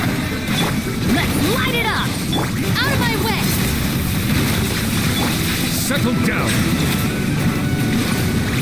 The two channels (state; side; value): noise; left; rumble, 15 dB below the sound